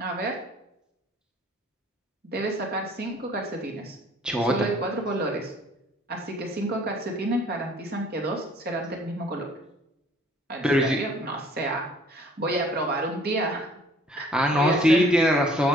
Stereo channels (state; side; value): normal; both; correlation 0.56